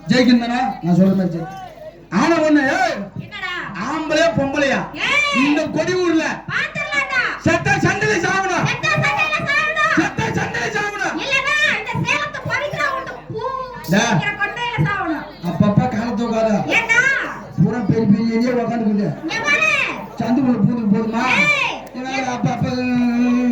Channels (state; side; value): identical; both; correlation 1.00